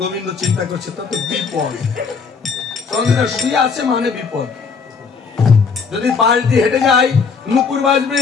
গোবিন্দ চিন্তা করছে তা তো বিপদ, চন্দ্র শুয়ে আছে মানে বিপদ। যদি পাশ দিয়ে হেঁটে যাই নুপুর বাজবে,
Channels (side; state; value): right; quieter; 5.4 dB